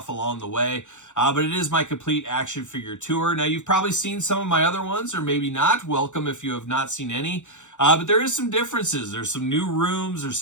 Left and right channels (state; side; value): late; right; 0.85 ms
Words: along the way. But it is my complete action figure tour. Now, you've probably seen some of my other ones, or maybe not. Welcome if you have not seen any. But there is some differences. There's some new rooms. There's